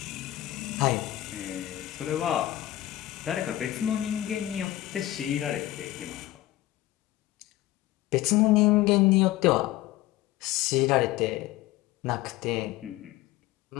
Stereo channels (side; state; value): right; quieter; 15.5 dB